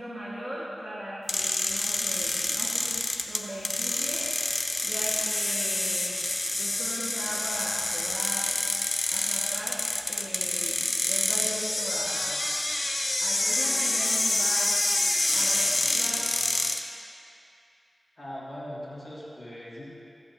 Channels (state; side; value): normal; both; correlation 0.96